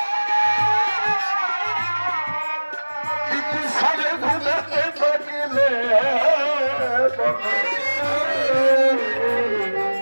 সারে ঘুমাতে থাকিলে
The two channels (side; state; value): both; inverted; correlation -1.00